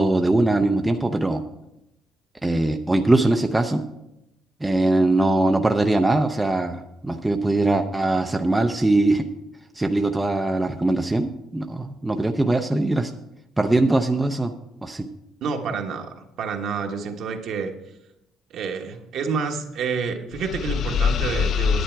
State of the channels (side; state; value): both; normal; correlation 0.88